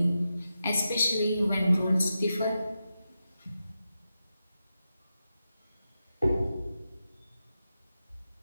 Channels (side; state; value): both; inverted; correlation -0.89